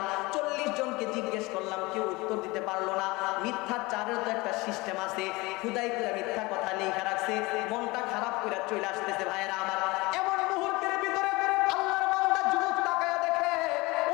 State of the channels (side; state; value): right; quieter; 23.0 dB